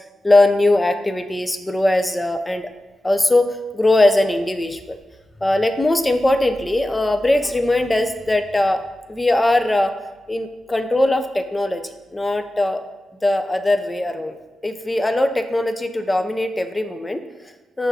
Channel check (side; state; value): both; normal; correlation 0.94